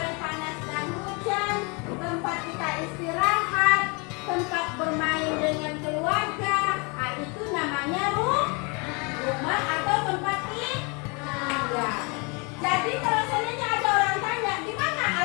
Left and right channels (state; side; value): quieter; right; 31.3 dB